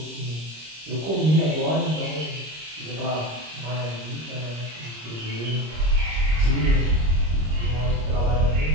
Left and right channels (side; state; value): left; late; 26 ms